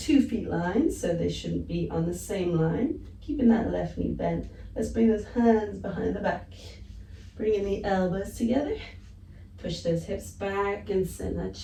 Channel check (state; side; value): identical; both; correlation 1.00